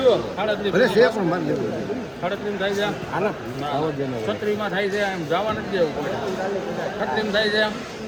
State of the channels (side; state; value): both; identical; correlation 1.00